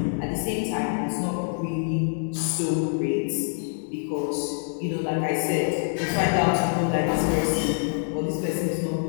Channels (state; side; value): silent; right; digital silence